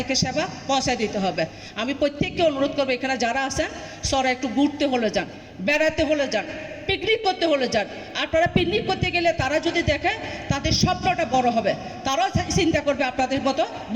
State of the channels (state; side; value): identical; both; correlation 1.00